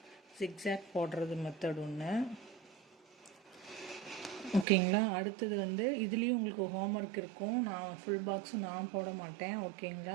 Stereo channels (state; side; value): drops out; left; at 4.7 s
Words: ஜிக்ஸாக் போடுறது மெத்தட் ஒன்று. ஓகேங்களா? அடுத்தது வந்து இதுலேயும் உங்களுக்கு ஹோம்ஒர்க் இருக்கும். நான் ஃபுல் பாக்ஸும் நான் போட மாட்டேன்.